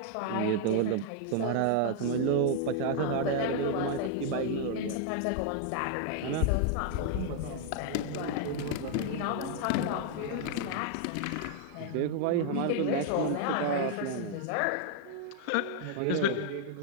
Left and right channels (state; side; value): different; both; correlation -0.01